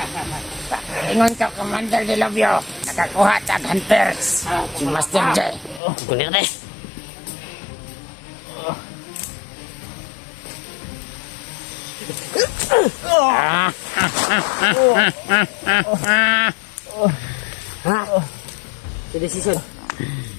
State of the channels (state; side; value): drops out; right; at 5.8 s